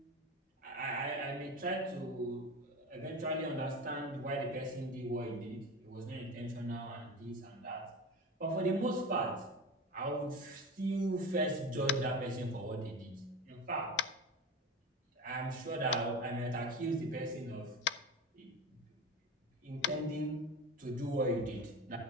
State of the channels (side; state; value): both; normal; correlation 0.28